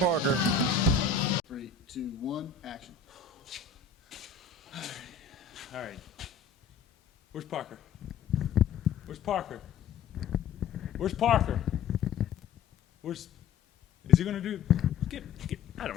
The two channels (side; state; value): right; quieter; 6.3 dB